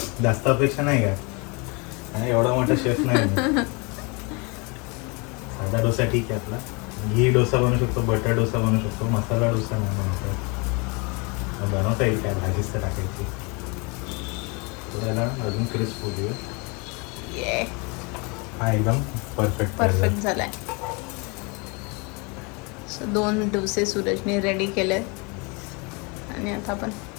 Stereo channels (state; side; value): quieter; right; 30.4 dB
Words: जास्त अपेक्षा नाही का, एवढा मोठा शेफ नाही. साधा डोसा ठीक आहे आपला. घी डोसा बनवू शकतो, बटर डोसा बनवू शकतो, मसाला डोसा नाही बनवतो. बनवता येईल काय, भाजीच तर टाकायची. त्याला अजून क्रिस्प होऊ दे. हा एकदम परफेक्ट झालाय. 2 डोसे सूरजने रेडी केले आणि आता आपण